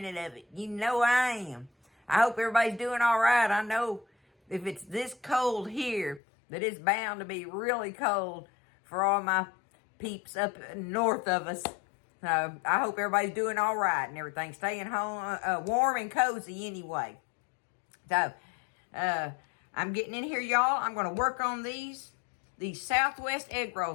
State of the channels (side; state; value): right; drops out; at 6.2 s